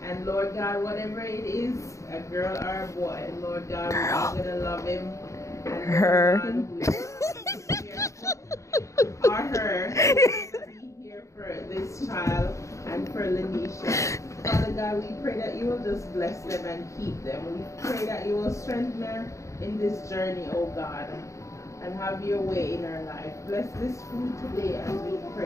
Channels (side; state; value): right; late; 0.15 ms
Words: And Lord God, whatever it is, a girl or a boy, Lord God, we're all going to love him. And her. Or her. Be here for this child and for Lanisha. Father God, we pray that you will just bless them and keep them. We pray that you will strengthen her in this journey, oh God, and have your way in her life. Bless this food today as we